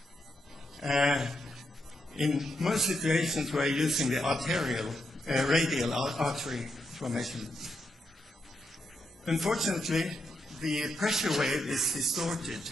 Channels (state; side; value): normal; both; correlation 0.82